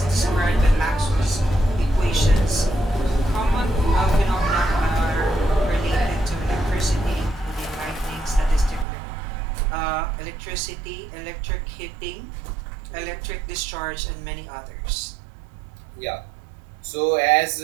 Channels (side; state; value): left; drops out; at 8.8 s